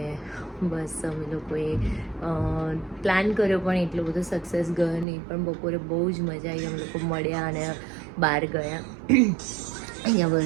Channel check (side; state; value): left; drops out; at 5.1 s